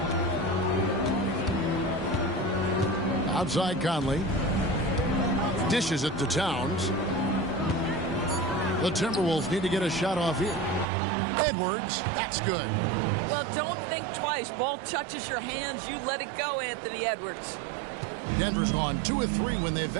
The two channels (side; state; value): left; drops out; at 10.9 s